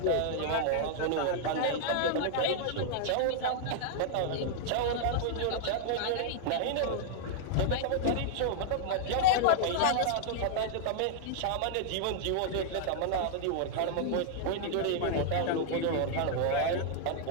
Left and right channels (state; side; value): different; both; correlation -0.01